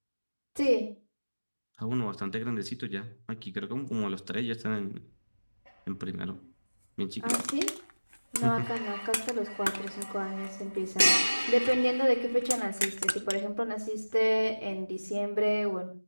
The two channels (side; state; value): both; inverted; correlation -1.00